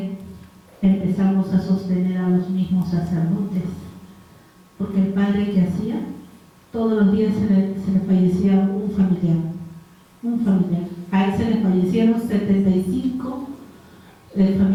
empezamos a sostener a los mismos sacerdotes, porque el padre que hacía, todos los días se le fallecía un familiar. A él se le fallecieron 75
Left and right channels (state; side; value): identical; both; correlation 1.00